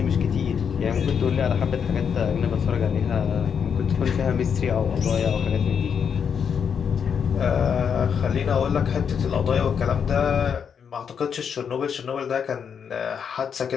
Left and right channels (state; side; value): quieter; right; 7.1 dB